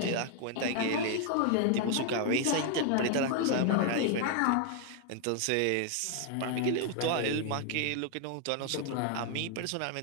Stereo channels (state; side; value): different; both; correlation 0.00